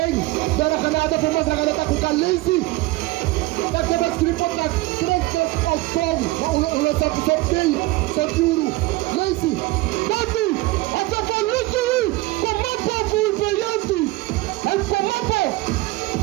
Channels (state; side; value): quieter; left; 20.2 dB